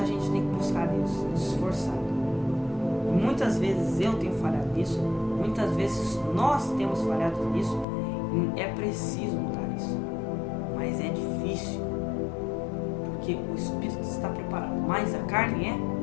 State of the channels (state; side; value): drops out; right; at 7.9 s